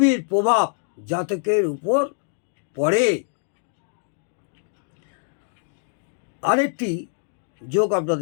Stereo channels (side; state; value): right; silent; digital silence